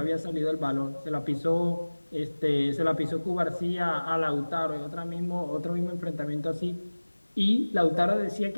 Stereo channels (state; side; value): inverted; both; correlation -1.00